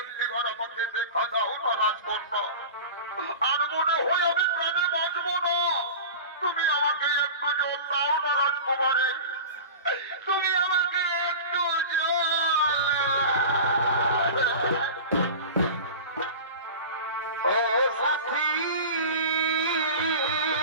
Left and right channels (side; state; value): both; inverted; correlation -0.33